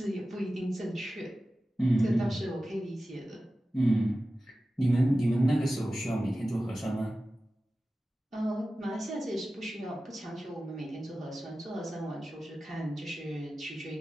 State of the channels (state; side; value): normal; both; correlation 0.95